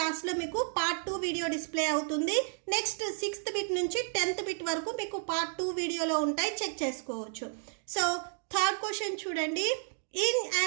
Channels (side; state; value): left; silent; 57 dB below the other